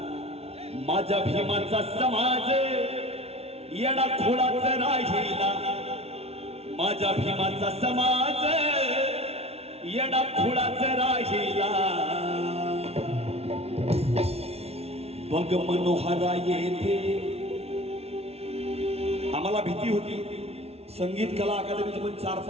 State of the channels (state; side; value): late; left; 0.30 ms